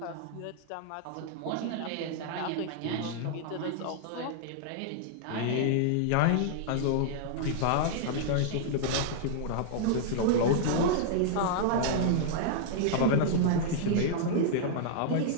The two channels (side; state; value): both; different; correlation -0.01